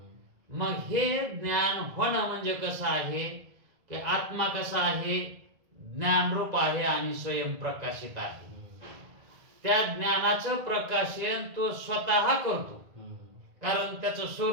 मग हे ज्ञान होणं म्हणजे कसं आहे की आत्मा कसा आहे, ज्ञानरूप आहे आणि स्वयंप्रकाशित आहे. त्या ज्ञानाचं प्रकाशन तो स्वतः करतो, कारण त्याचं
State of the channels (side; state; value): left; late; 1.9 ms